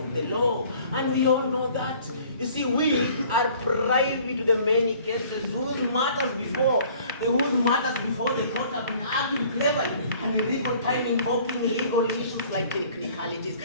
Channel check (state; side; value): inverted; both; correlation -0.53